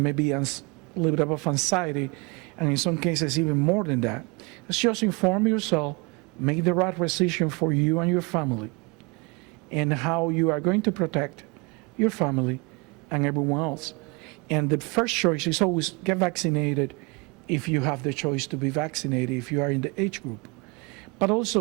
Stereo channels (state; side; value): quieter; left; 29.5 dB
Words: maybe a little bit of anxiety, and in some cases even more than that. It's just inform yourself, make the right decision for you and your family, and how you are going to protect your family and everyone else. And the first choice is always get vaccinated if you have the choice to be vaccinated, if you are in the age group. But